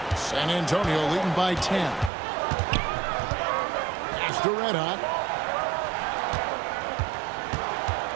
San Antonio leading by 10. Pass to Red Hot.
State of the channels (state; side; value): drops out; left; at 2.1 s